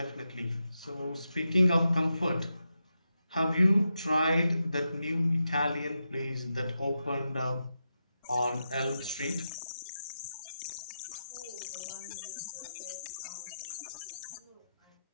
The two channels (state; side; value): inverted; both; correlation -0.88